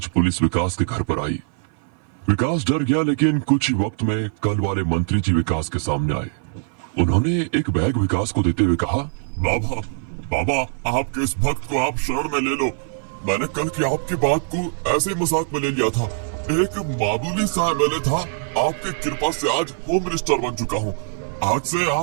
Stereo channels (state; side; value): silent; left; 57 dB below the other